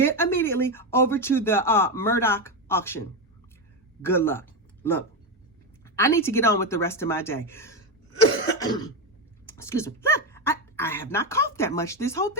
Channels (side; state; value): both; normal; correlation 0.11